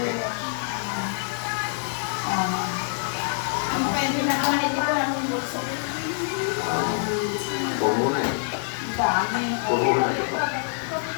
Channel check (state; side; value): silent; right; 61 dB below the other